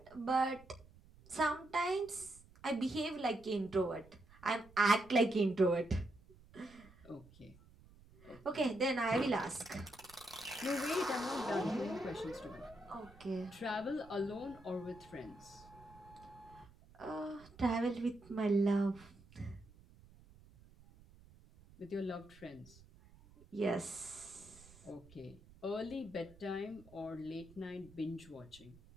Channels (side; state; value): right; noise; rumble, 23 dB below the sound